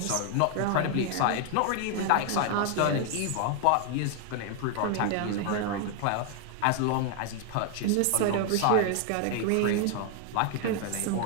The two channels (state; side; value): different; both; correlation 0.00